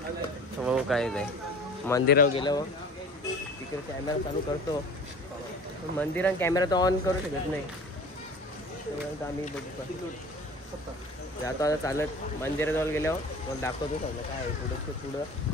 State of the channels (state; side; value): normal; both; correlation 0.42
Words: हो काय नाही. मंदिरावर गेलो. तिकडे कॅमेरा चालू करतो. मंदिरात कॅमेरा तर ऑन करू शकत नाही. आम्ही बघू जातो आता चालत. मंदिराजवळ गेल्यावर मग दाखवतो सगळं काय आहे पुढं.